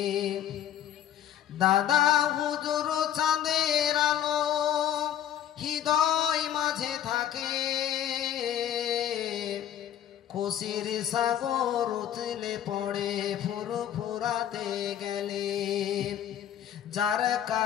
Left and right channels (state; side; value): quieter; right; 10.5 dB